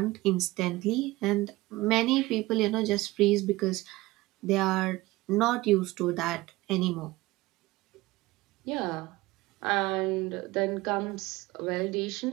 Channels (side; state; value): left; quieter; 19.7 dB